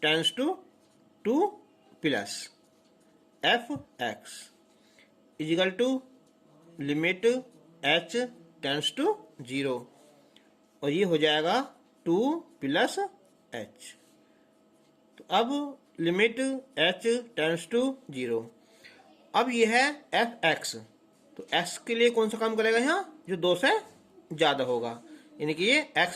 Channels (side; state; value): both; identical; correlation 1.00